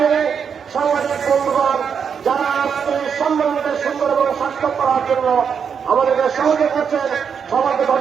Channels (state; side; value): quieter; left; 6.9 dB